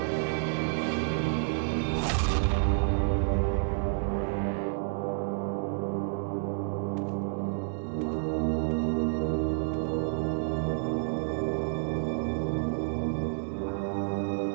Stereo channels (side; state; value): left; silent; digital silence